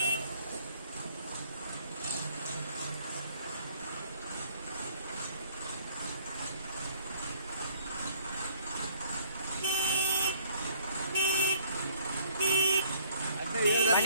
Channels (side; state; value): both; inverted; correlation -0.60